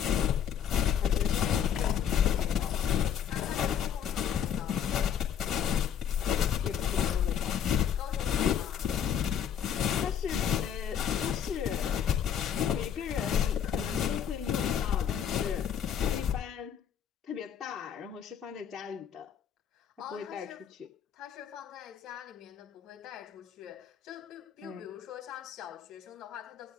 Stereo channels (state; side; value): quieter; right; 8.8 dB